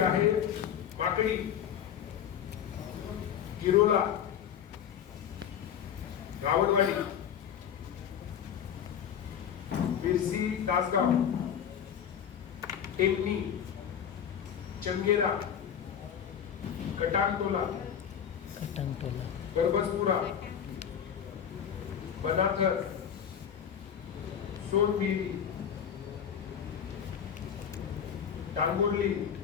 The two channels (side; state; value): right; quieter; 8.6 dB